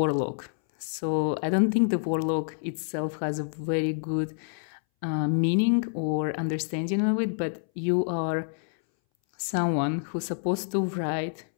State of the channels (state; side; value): silent; right; 60 dB below the other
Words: So I don't think the warlock itself has a very good meaning or understanding of it, but you are someone who's supposed to write,